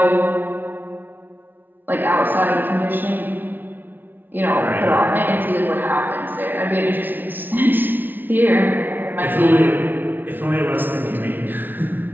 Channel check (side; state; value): left; late; 0.090 ms